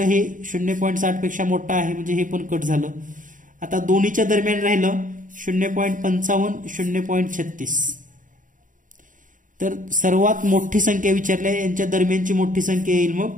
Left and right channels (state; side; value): late; left; 0.38 ms